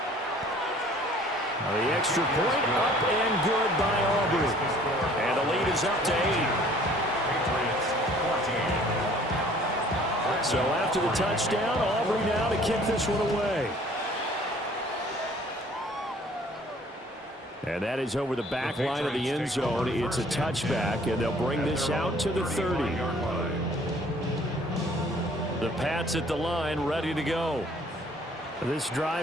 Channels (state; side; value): normal; both; correlation 0.55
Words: The extra point up and good by Aubrey. And the lead is up to 8. So after the touchdown, Aubrey now to kick this one away. And that is over the back line of the end zone. It's a touchback, and they'll bring this out to the 30. The Pats at the line, ready to go. This